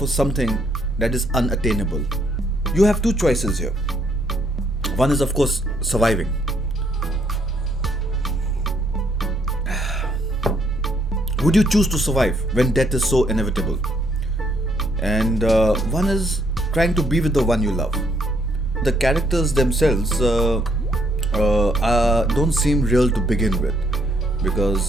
something that is unattainable. You have two choices here. One is, of course, surviving. Would you choose to survive when death is so inevitable? And one is trying to be with the one you love. The characters themselves don't seem real to begin with,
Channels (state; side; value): normal; both; correlation 0.70